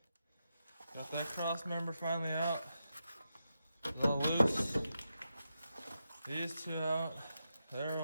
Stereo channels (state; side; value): inverted; both; correlation -0.87